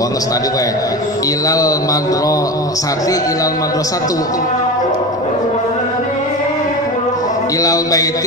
geus tadi we ilal madrasati ilal madrasatu ilal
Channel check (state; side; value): normal; both; correlation 0.26